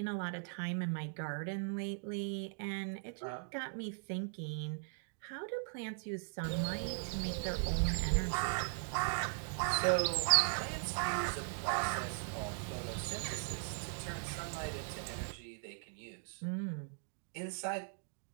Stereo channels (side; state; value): left; silent; digital silence